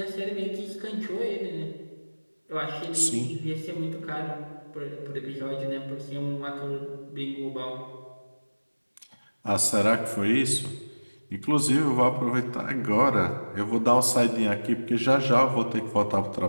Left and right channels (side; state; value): both; inverted; correlation -1.00